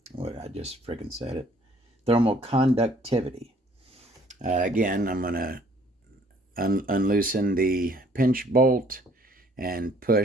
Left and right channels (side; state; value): both; normal; correlation 0.60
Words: what I just freaking said it, thermal conductivity. Again, I'm going to unloosen the pinch bolt and